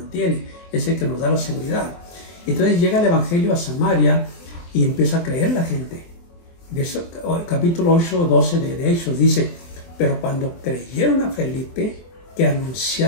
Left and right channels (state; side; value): late; right; 23 ms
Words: es el que nos da la seguridad. Entonces llega el Evangelio a Samaria y empieza a creer la gente. De eso, capítulo 8, 12 de Hechos dice: pero cuando creyeron a Felipe, que